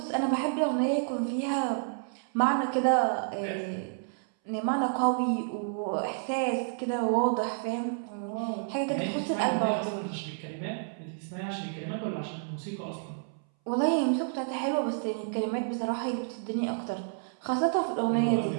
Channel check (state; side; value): silent; left; 58 dB below the other